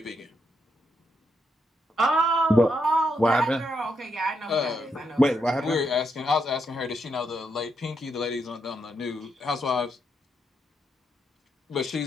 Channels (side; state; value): both; normal; correlation 0.80